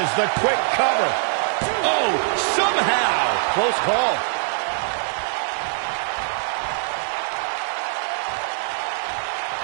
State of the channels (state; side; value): silent; left; 64 dB below the other